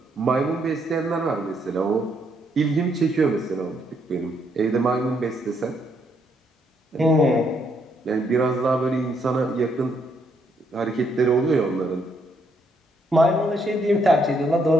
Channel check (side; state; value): both; normal; correlation 0.73